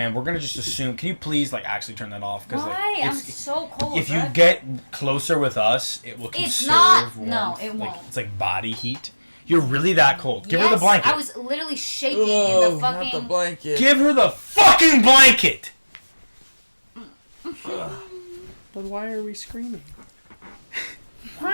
we're gonna just assume. Can you please actually turn that off? Why? I'm so cold. If you get closer with us, it will conserve. It's not. Warmth. No, it won't. It's like body heat. You're really that cold. Give her the blanket. I was literally shaking in the fucking... Not the blanket. Give her the fucking blanket! But why are we screaming?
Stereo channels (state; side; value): inverted; both; correlation -1.00